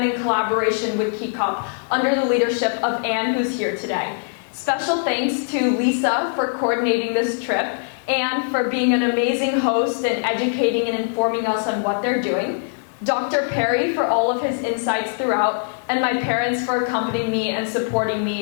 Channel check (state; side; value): silent; right; digital silence